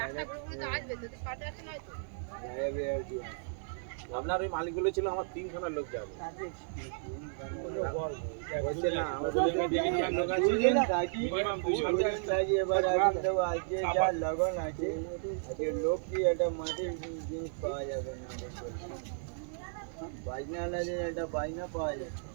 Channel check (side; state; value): left; silent; digital silence